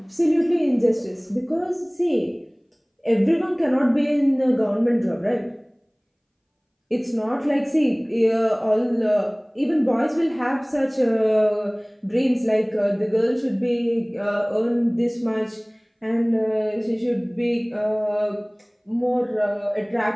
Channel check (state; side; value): identical; both; correlation 1.00